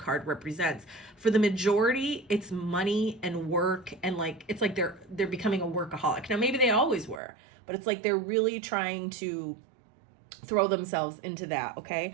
represents. For the majority, it's money and work, and it's like they're becoming a workaholic. Now, maybe they always were, but it's like they're really trying to throw themselves into that, okay?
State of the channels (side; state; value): left; drops out; at 7.2 s